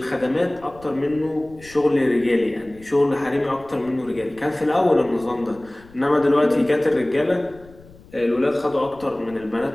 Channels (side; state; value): left; noise; rumble, 23 dB below the sound